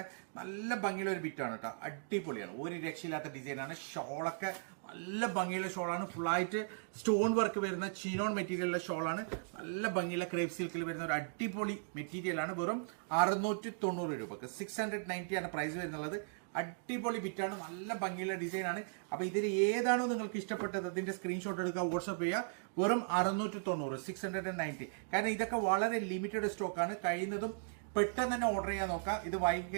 നല്ല ഭംഗിയുള്ള ഒരു ബിറ്റാണ് കേട്ടോ, അടിപൊളിയാണ്, ഒരു രക്ഷയില്ലാത്ത ഡിസൈനാണ്. ഷോളൊക്കെ നല്ല ഭംഗിയുള്ള ഷോളാണ്, ഫുള്ളായിട്ട് സ്റ്റോൺ വർക്ക് വരുന്ന ചിനോൺ മെറ്റീരിയലുള്ള ഷോളാണ്. നല്ല ഭംഗിയുള്ള ക്രേപ്പ് സിൽക്കിൽ വരുന്ന ഒരു അടിപൊളി മെറ്റീരിയൽ ആണ്. വെറും 690 രൂപക്ക് 690 ആണ് പ്രൈസ് വരുന്നുള്ളത്. അടിപൊളി ബിറ്റാണ്, നല്ല ഭംഗിയുള്ള ഡിസൈൻ ആണ്. അപ്പൊ ഇതിൽ ഏതാണോ നിങ്ങൾക്ക് ഇഷ്ടപ്പെട്ടത് അതിന്റെ സ്ക്രീൻഷോട്ട് എടുക്കുക, വാട്സ്ആപ്പ് ചെയ്യുക. വെറും 690 690. കാരണം ഇതൊക്കെ വളരെ ലിമിറ്റഡ് സ്റ്റോക്ക് ആണ്. കഴിയുന്നതും പെട്ടെന്ന് തന്നെ ഓർഡർ ചെയ്യാൻ നോക്കാം. ഇത് വൈകി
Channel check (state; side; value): silent; left; digital silence